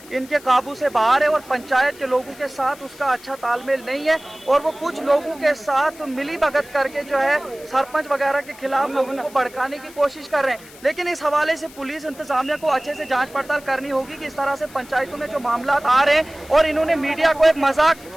इनके काबू से बाहर है और पंचायत के लोगों के साथ उसका अच्छा तालमेल नहीं है, और वो कुछ लोगों के साथ मिली भगत करके जो है सरपंच वगैरह के खिलाफ लोगों को भड़काने की कोशिश कर रहे हैं। लेकिन इस हवाले से पुलिस इंतजामिया को अच्छे से जाँच पड़ताल करनी होगी कि इस तरह से पंचायतों में जो मामला आ रहे हैं, और इन्होंने मीडिया को एक मजाक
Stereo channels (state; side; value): noise; left; hiss, 21 dB below the sound